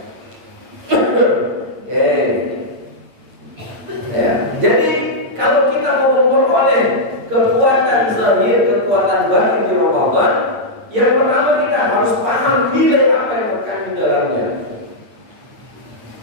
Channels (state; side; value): late; left; 8.9 ms